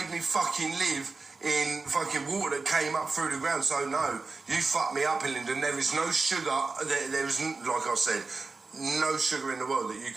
me fucking live in fucking water that came up through the ground. So no, you fucked me up, Hillingdon. There is no sugar, there is, like I said, no sugar in the world that you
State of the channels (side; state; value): left; quieter; 4.0 dB